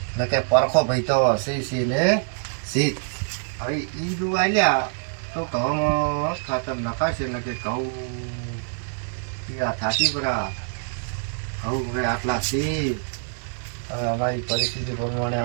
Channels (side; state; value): left; silent; 62 dB below the other